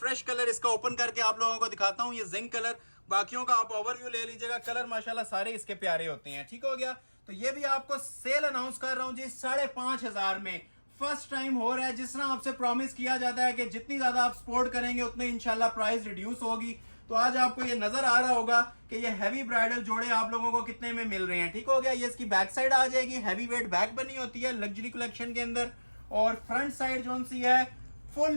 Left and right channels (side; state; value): both; inverted; correlation -1.00